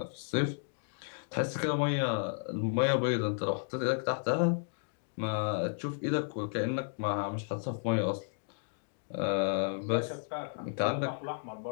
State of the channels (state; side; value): silent; right; digital silence